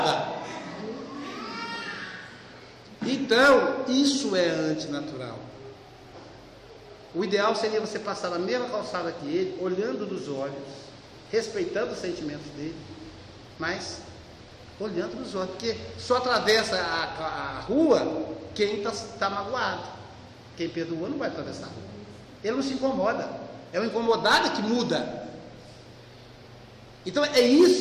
Então, isso é antinatural. O ideal seria você passar na mesma calçada que ele, olhando nos olhos, respeitando os sentimentos dele, mas olhando nos olhos, porque só atravessa a rua quem está magoado. Quem perdoa não vai atravessar a rua. Ele não se incomoda. É o incomodado que muda. Então é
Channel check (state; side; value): identical; both; correlation 1.00